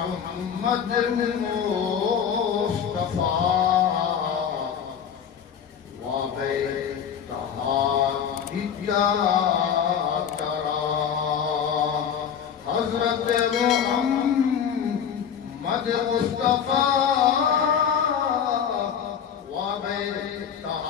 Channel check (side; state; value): right; quieter; 8.0 dB